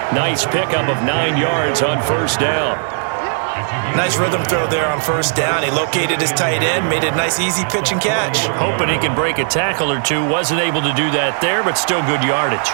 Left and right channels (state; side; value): silent; left; digital silence